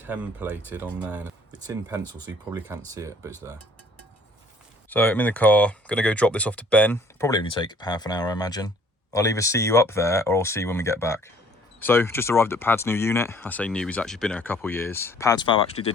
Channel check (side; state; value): both; normal; correlation 0.56